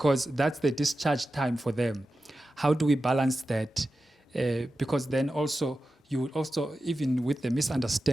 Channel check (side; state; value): both; normal; correlation 0.92